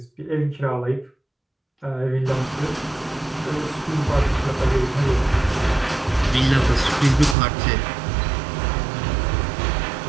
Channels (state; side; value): drops out; left; at 7.4 s